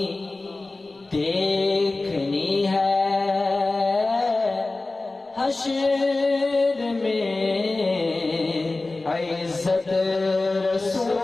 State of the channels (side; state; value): right; quieter; 3.2 dB